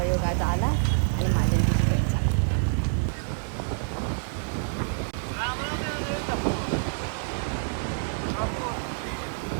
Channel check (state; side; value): silent; left; digital silence